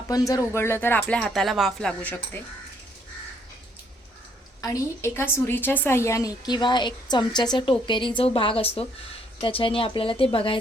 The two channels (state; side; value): normal; both; correlation 0.68